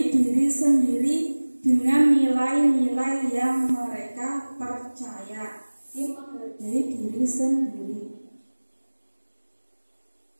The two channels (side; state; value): both; inverted; correlation -1.00